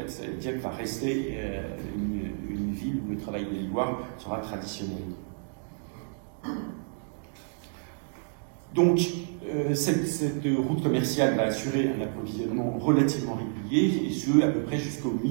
Dieppe va rester une ville où le travail de l'ivoire sera traditionnel. Donc, cette route commerciale va assurer un approvisionnement relativement régulier, et ce, à peu près jusqu'au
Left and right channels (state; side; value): silent; left; 58 dB below the other